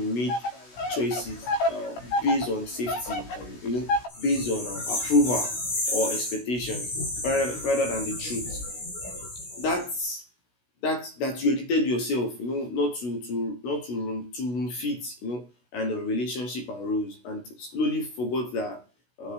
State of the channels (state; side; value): late; right; 16 ms